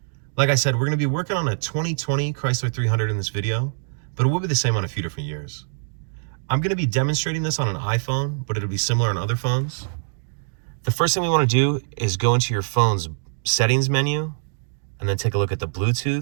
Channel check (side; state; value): left; silent; digital silence